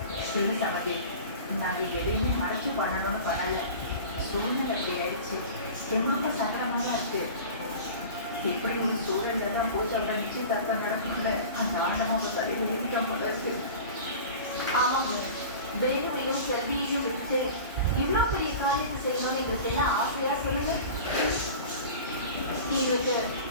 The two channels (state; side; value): inverted; both; correlation -0.37